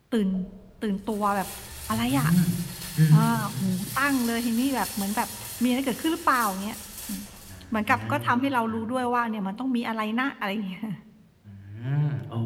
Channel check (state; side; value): identical; both; correlation 1.00